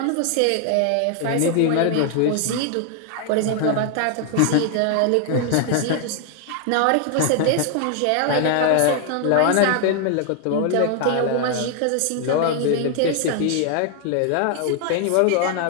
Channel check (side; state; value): both; different; correlation 0.00